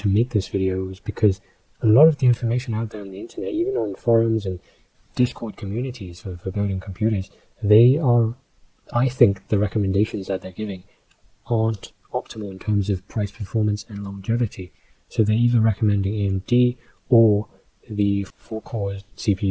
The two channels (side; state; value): both; identical; correlation 1.00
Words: make this video is because a lot of the information out there on the internet, even on forums and Discord communities for building computers, I think the recommendations that they're giving aren't optimal in terms of price, performance and longevity. So they're either recommending AMD or the 4-core